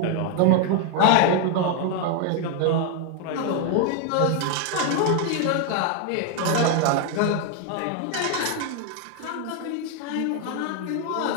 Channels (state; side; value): different; both; correlation 0.01